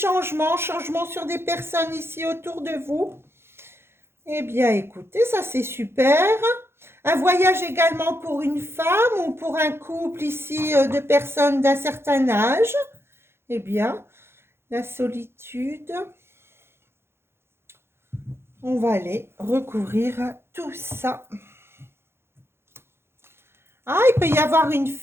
sur des personnes ici autour de vous. Eh bien, écoutez, ça c'est super. Un voyage également pour une femme ou pour un couple ici de personnes d'un certain âge. Eh bien, la solitude. On va aller recouvrir tout ça. Ah, il peut y avoir une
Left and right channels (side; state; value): left; late; 0.12 ms